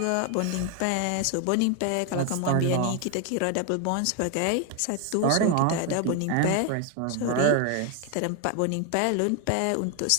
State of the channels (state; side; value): different; both; correlation 0.01